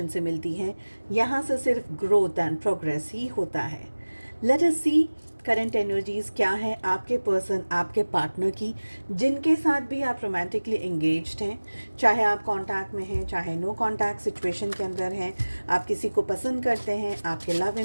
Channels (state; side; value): inverted; both; correlation -1.00